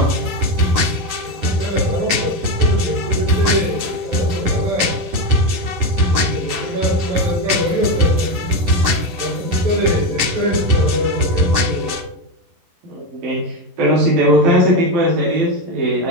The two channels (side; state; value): left; late; 10 ms